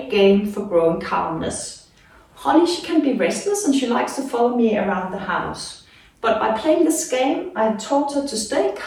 game for growing calmness. Holly, she can be restless and she likes to follow me around the house. But by playing this game, I have taught her to stay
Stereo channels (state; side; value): identical; both; correlation 1.00